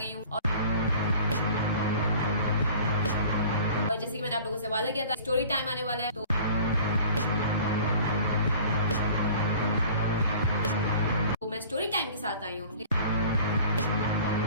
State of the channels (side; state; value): both; inverted; correlation -0.46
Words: हूँ और जैसे कि मैंने आप लोगों से वादा किया था, स्टोरी टाइम आने वाला है, तो मैं स्टोरी टाइम के साथ आई हूँ।